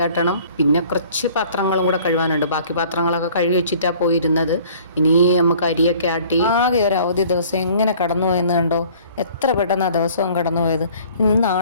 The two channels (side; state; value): both; inverted; correlation -0.52